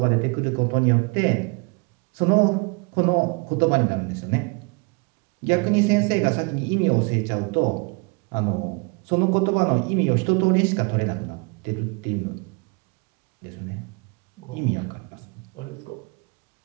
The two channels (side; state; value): left; quieter; 31.5 dB